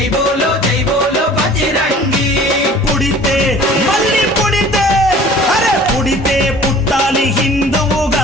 బోలో బజరంగి. పుడితే మళ్ళీ పుడితే, అరే పుడితే పుట్టాలి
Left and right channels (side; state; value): both; normal; correlation 0.48